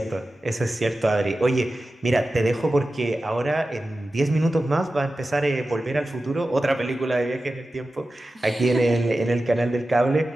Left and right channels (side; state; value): both; normal; correlation 0.94